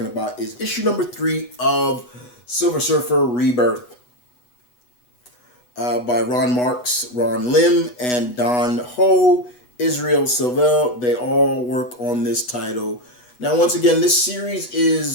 about is issue number 3 of Silver Surfer Rebirth. By Ron Marz, Ron Lim, and Don Ho, Israel Silvel. They all work on this title. Now, once again, this series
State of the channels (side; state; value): right; late; 8.1 ms